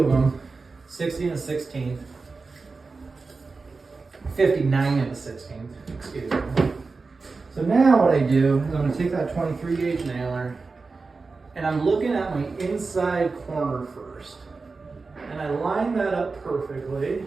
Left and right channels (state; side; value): quieter; left; 4.1 dB